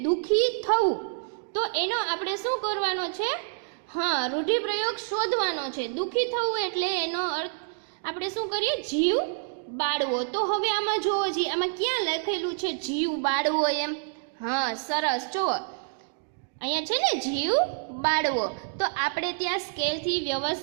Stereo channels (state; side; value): silent; left; digital silence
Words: દુઃખી થવું. તો એનો આપણે શું કરવાનો છે? હા, રૂઢિપ્રયોગ શોધવાનો છે. દુઃખી થવું એટલે એનો અર્થ આપણે શું કરીએ? જીવ બાળવો. તો હવે આમાં જુઓ જી, આમાં ક્યાં લખેલું છે જીવ બાળવો એમ? હા સરસ, જુઓ અહીંયા છે ને જીવ બાળવો. તો આપણે ત્યાં સ્કેલથી